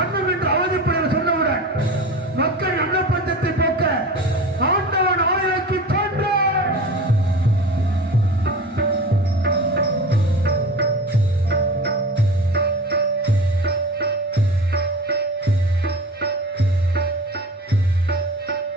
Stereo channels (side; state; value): both; normal; correlation 0.35